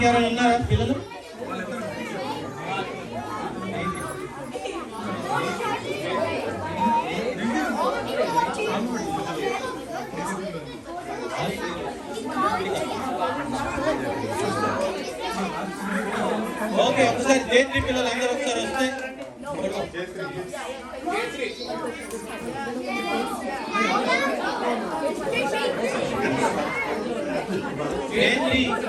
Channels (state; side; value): identical; both; correlation 1.00